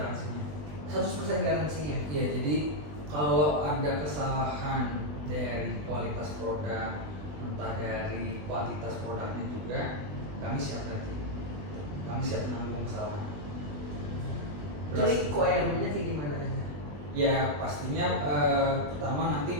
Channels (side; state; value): left; late; 20 ms